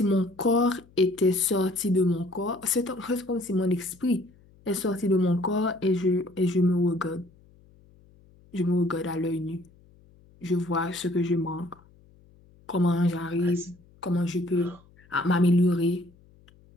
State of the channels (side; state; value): left; noise; hum, 28 dB below the sound